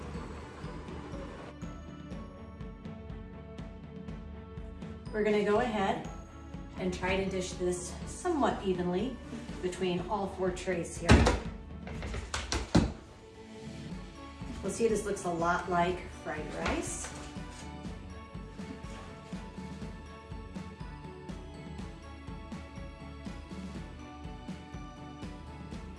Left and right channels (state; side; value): identical; both; correlation 1.00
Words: We're going to go ahead and try to dish this somewhat evenly between all 4 trays here. We'll see, this looks a lot like fried rice.